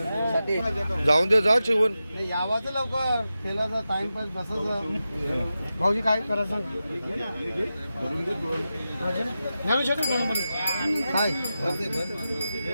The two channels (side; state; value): both; inverted; correlation -0.92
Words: जाऊन दे, जा चिवून यावाचं लवकर फेलाचा टाइमपास बसायचं. भाऊजी काय करायचं काय